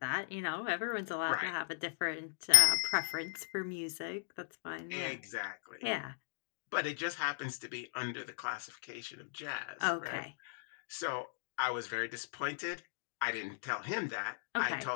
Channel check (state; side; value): silent; right; digital silence